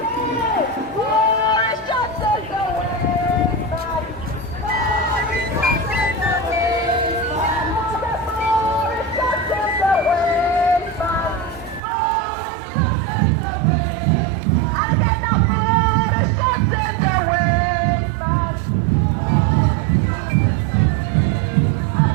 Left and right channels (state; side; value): drops out; left; at 11.8 s